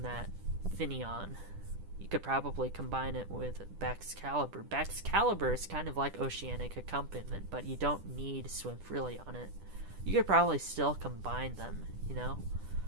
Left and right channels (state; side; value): late; left; 10 ms